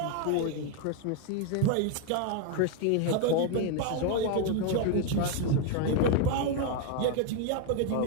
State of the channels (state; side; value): different; both; correlation 0.01